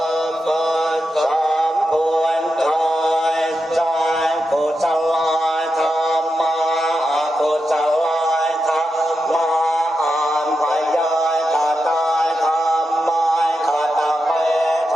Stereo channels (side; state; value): both; normal; correlation 0.88